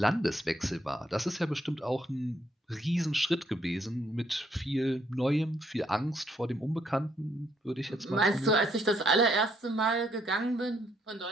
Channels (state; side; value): normal; both; correlation 0.71